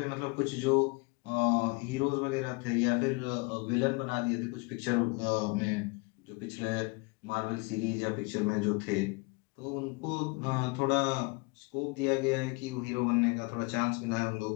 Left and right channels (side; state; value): right; quieter; 28.4 dB